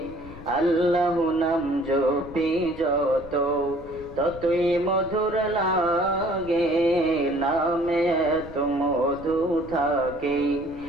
আল্লাহ নাম জপি যত ততই মধুর লাগে নামে তো মধু থাকে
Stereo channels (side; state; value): left; noise; rumble, 16 dB below the sound